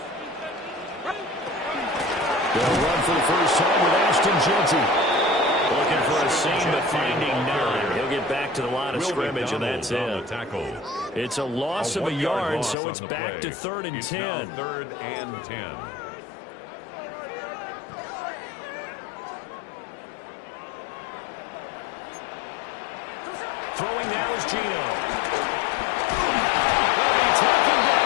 They'll run for the first time with Ashton Jeanty. Looking for a seam, but finding none. He'll get back to the line of scrimmage, and that's it. It's a loss of a yard, so it's back to 3rd and 10. 3rd and 10. Throwing now is Gino. Will be taken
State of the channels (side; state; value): right; drops out; at 12.8 s